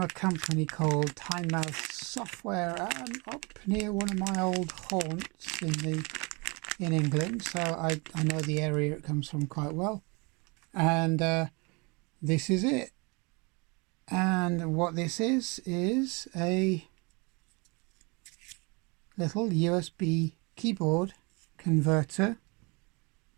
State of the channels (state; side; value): quieter; left; 29.2 dB